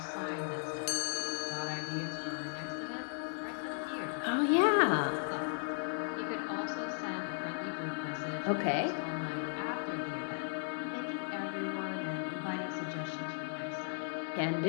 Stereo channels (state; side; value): silent; right; 54 dB below the other